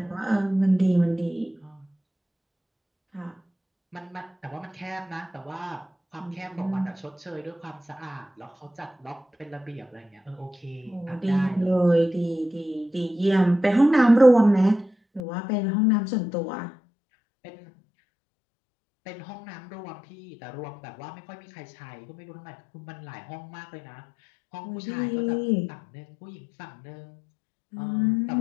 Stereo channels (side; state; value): right; drops out; at 15.2 s